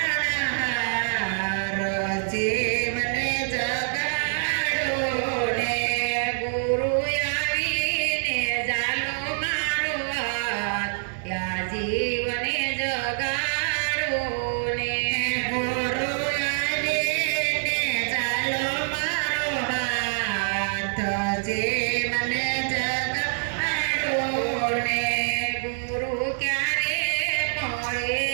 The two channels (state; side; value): silent; left; digital silence